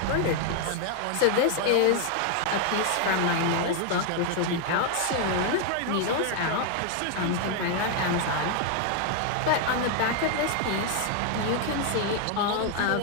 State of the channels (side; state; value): both; different; correlation 0.00